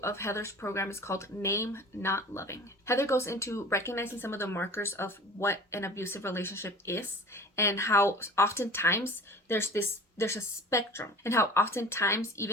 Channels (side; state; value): both; normal; correlation 0.42